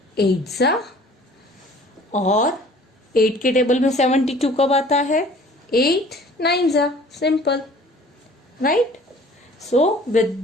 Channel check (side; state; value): both; normal; correlation 0.50